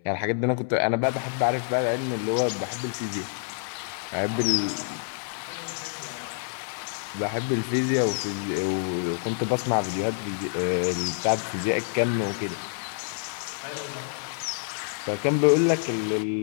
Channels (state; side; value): silent; right; 60 dB below the other